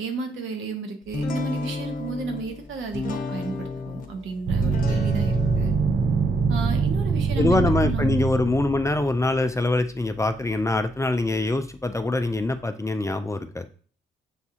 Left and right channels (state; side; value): normal; both; correlation 0.76